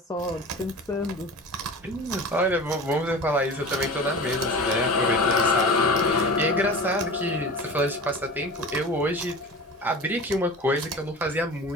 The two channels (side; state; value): both; normal; correlation 0.35